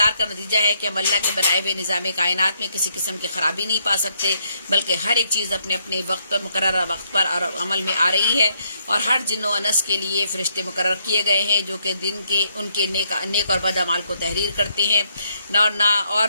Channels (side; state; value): both; inverted; correlation -0.74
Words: کا نتیجہ ہے کہ ہم اللہ کے بنائے ہوئے نظام کائنات میں کسی قسم کی خرابی نہیں پا سکتے، بلکہ ہر ایک چیز اپنے اپنے وقت پر مقررہ وقت پر عمل میں آ رہی ہے، اور ہر جن و انس کے لیے فرشتے مقرر کیے گئے ہیں جو کہ دن کے ان کے نیک اور بد اعمال کو تحریر کرتے ہیں، اور